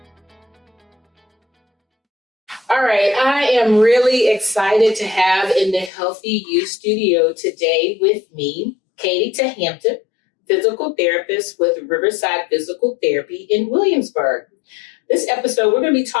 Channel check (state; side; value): drops out; right; at 5.9 s